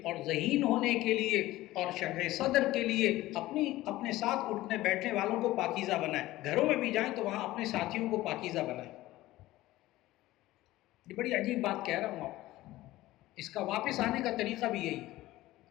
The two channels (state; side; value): quieter; right; 16.9 dB